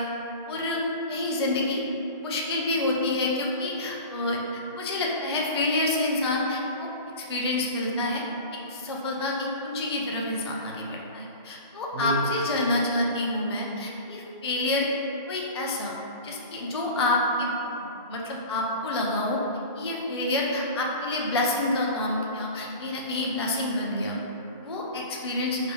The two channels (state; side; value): inverted; both; correlation -0.34